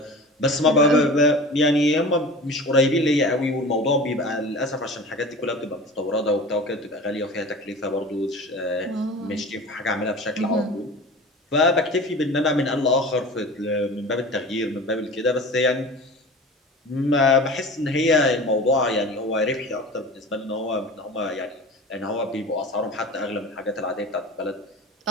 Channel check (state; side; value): normal; both; correlation 0.36